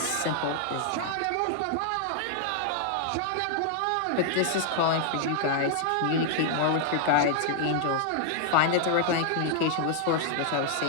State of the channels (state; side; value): different; both; correlation 0.00